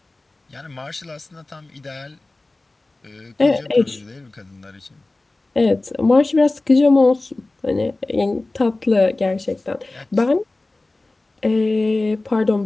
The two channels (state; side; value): quieter; right; 3.0 dB